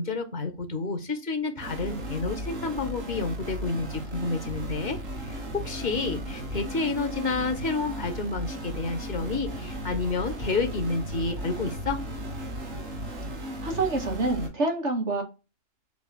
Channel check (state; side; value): late; left; 2.1 ms